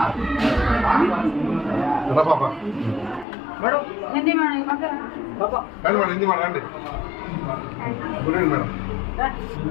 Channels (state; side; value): drops out; right; at 3.2 s